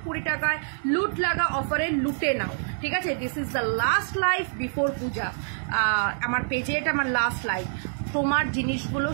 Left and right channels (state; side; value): silent; left; 61 dB below the other